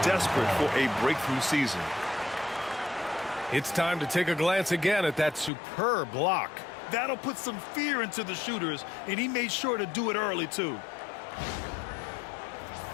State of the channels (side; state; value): right; drops out; at 5.5 s